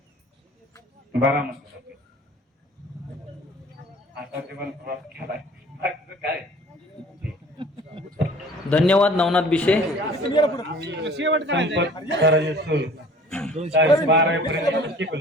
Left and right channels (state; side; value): normal; both; correlation 0.49